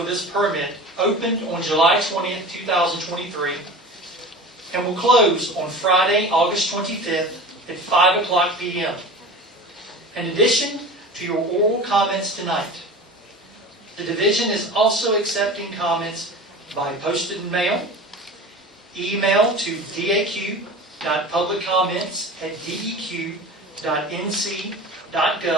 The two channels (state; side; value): normal; both; correlation 0.35